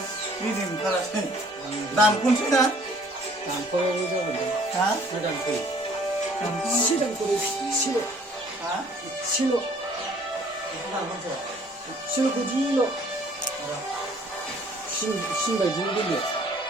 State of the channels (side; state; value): both; normal; correlation 0.56